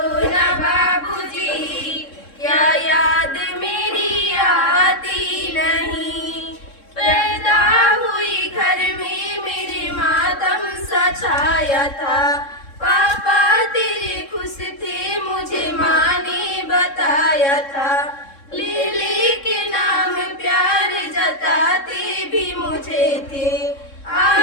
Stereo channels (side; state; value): right; late; 3.7 ms